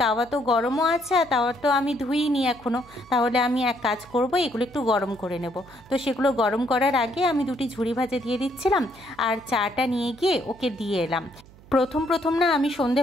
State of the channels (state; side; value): noise; right; hum, 24 dB below the sound